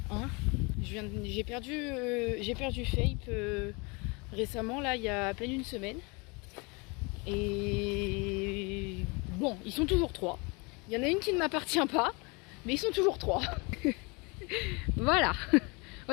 Hein. J'ai perdu Fape récemment, là, il y a à peine une semaine. Et bon, ils sont toujours 3. Il y en a une qui ne m'appartient pas, mais ils sont toujours 3. Voilà.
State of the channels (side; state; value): right; quieter; 28.8 dB